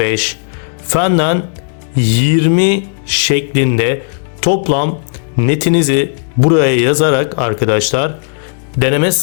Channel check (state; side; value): silent; right; digital silence